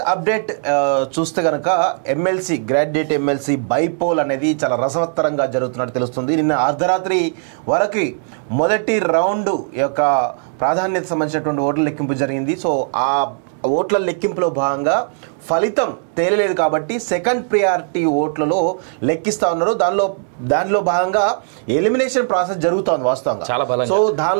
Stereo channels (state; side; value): silent; left; digital silence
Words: అప్డేట్ చూస్తే గనక ఎమ్మెల్సీ గ్రాడ్యుయేట్ ఎమ్మెల్సీ బైపోల్ అనేది చాలా రసవత్తరంగా జరుగుతున్నట్టు తెలుస్తుంది. నిన్న అర్ధరాత్రి వరకు మొదటి రౌండ్ యొక్క ప్రాధాన్యత సంబంధించినటువంటి ఓట్ల లెక్కింపు జరిగింది. సో ఆ ఓట్ల లెక్కింపులో భాగంగా ఫలితం తేలలేదు కాబట్టి సెకండ్ ప్రియారిటీ ఓట్లలో లెక్కిస్తా ఉన్నారు. దానిలో భాగంగా ఎలిమినేషన్ ప్రాసెస్ జరుగుతోంది వాస్తవంగా. సో